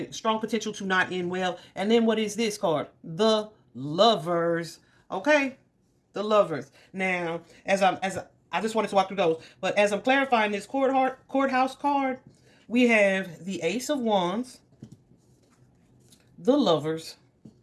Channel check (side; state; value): both; identical; correlation 1.00